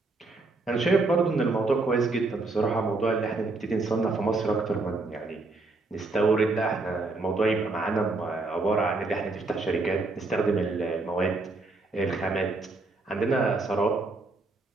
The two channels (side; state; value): left; quieter; 3.4 dB